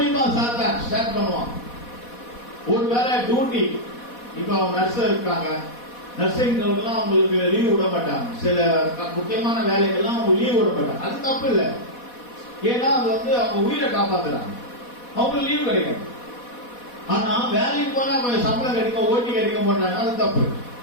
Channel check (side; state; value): right; late; 4.1 ms